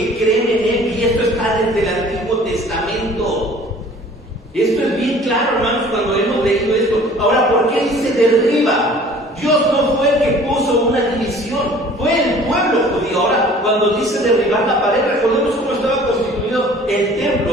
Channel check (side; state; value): both; normal; correlation 0.50